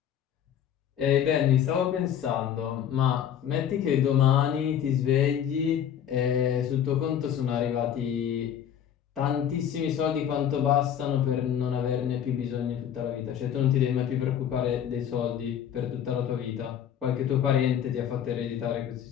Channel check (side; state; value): right; quieter; 9.4 dB